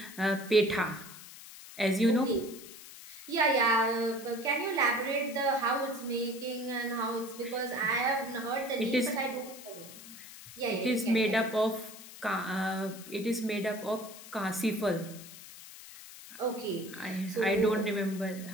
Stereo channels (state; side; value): noise; left; hiss, 15 dB below the sound